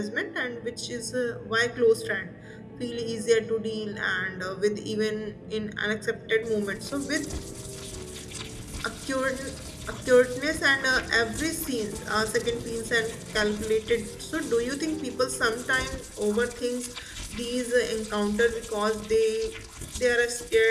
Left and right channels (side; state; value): both; identical; correlation 1.00